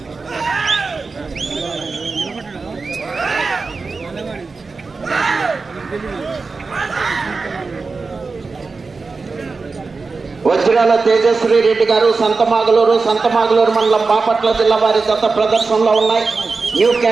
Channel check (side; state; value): left; quieter; 4.2 dB